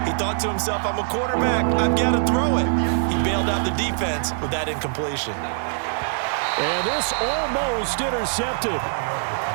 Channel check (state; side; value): silent; left; 63 dB below the other